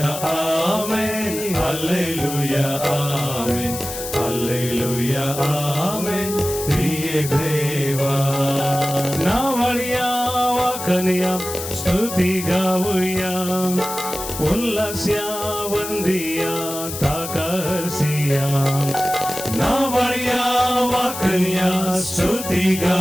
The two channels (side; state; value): left; noise; hiss, 8 dB below the sound